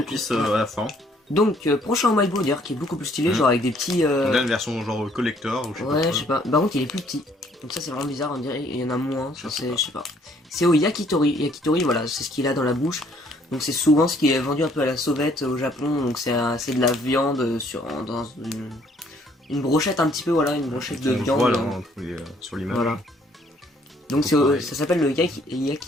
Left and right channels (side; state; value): both; normal; correlation 0.63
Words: à la fin. Donc, prochain Umaibo d'ailleurs, qui est beaucoup plus stylé, genre avec des petits. On a une version genre collector ou je sais pas. Ouais, je sais pas. Par contre, il est plus petit. Donc ça c'est vraiment bizarre, on dirait il y en a moins, je sais pas. C'est au yakitori. Yakitori, voilà, c'est ce qu'il a dans la bouche. Donc c'est souvent ce qui est vendu un peu à la sauvette au Japon. Donc c'est de la viande dans une brochette un petit peu, voilà, une brochette de viande. Voilà, sur l'image. Voilà. Donc ça s'appelle le